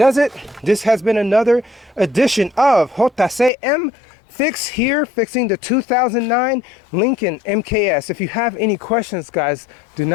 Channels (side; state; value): right; drops out; at 3.5 s